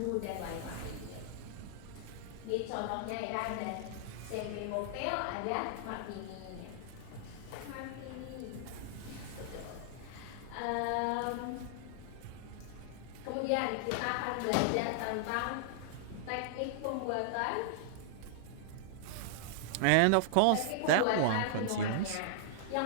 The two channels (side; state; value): both; different; correlation -0.01